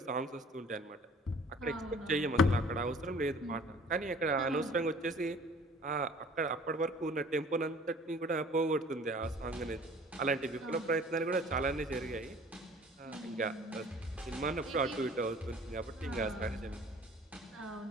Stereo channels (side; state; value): both; normal; correlation 0.51